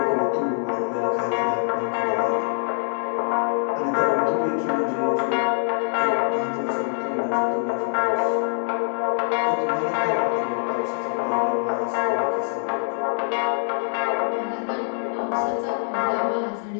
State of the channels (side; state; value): right; silent; digital silence